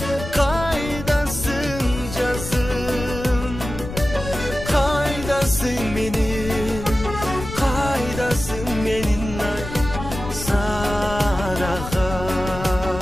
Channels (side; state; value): left; noise; rumble, 9 dB below the sound